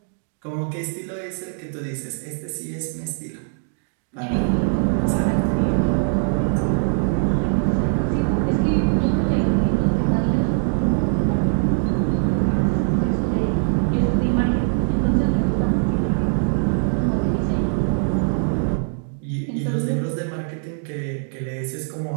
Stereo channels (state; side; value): silent; left; digital silence